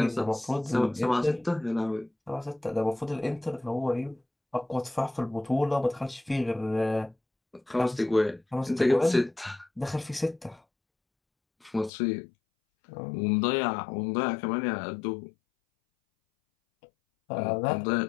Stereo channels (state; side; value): drops out; right; at 11.9 s